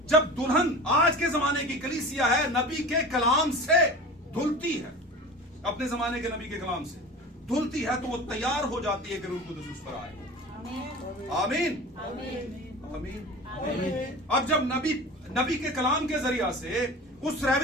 जब दुल्हन आज के जमाने की कलीसिया है, नबी के कलाम से धुलती है, अपने जमाने के नबी के कलाम से धुलती है, तो वो तैयार हो जाती है कि रूह कुद्स उस पर आए। आमीन। आमीन। अब जब नबी के कलाम के जरिया से, उस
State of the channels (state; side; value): normal; both; correlation 0.35